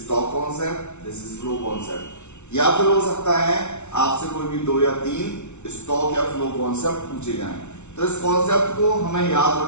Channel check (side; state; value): right; late; 0.82 ms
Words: stock concept, this is flow concept, या फिर हो सकता है आपसे कोई भी 2 या 3 स्टॉक या फ्लो कॉन्सेप्ट पूछे जाएं। तो इस कॉन्सेप्ट को हमें याद